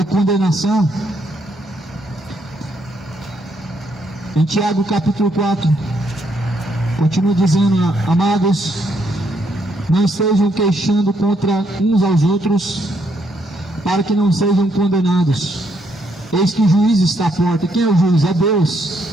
condenação. Em Tiago capítulo 4, continua dizendo: amados, não estejam queixando contra uns aos outros, para que não sejam condenados. Eis que o juiz está à porta. Quem é o juiz? É Deus.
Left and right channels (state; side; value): normal; both; correlation 0.74